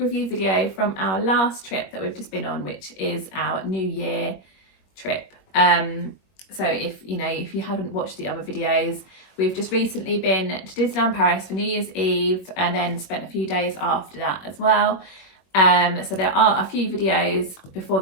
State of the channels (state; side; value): late; right; 21 ms